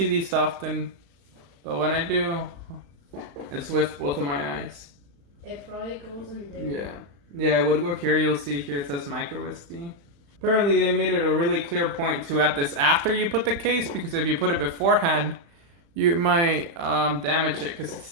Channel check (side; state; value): left; late; 35 ms